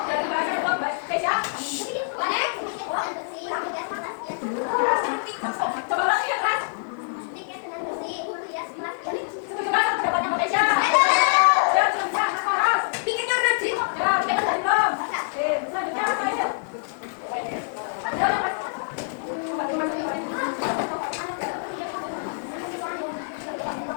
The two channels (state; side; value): silent; right; digital silence